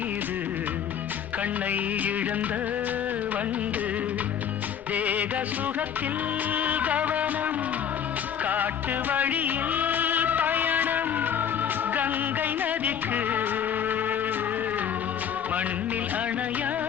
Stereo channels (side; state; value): right; quieter; 8.6 dB